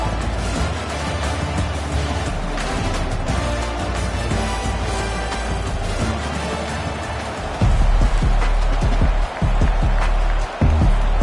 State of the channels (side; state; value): both; identical; correlation 1.00